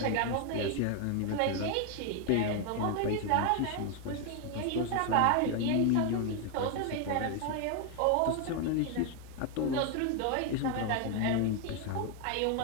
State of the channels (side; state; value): both; different; correlation 0.01